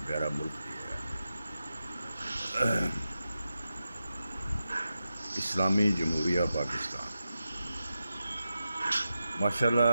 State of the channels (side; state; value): both; inverted; correlation -0.90